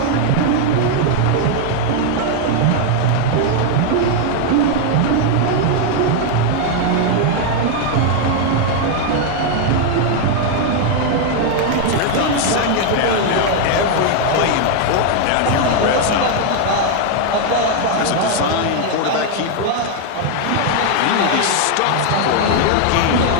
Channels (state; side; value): different; both; correlation 0.00